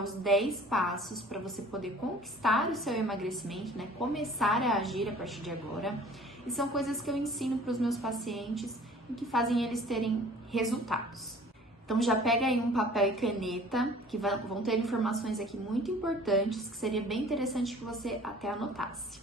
os 10 passos para você poder conquistar o seu emagrecimento, né? Começar a agir a partir de agora. E são coisas que eu ensino para os meus pacientes e que fazem eles terem resultados. Então já pega aí um papel e caneta, que vão ter informações aqui muito importantes, que seria bem interessante que você até anotasse.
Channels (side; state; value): both; normal; correlation 0.49